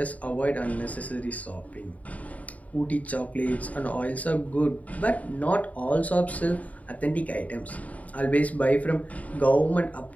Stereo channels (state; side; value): late; right; 0.070 ms